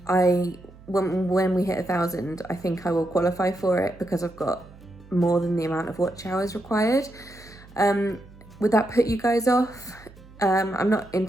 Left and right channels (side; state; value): right; noise; hum, 22 dB below the sound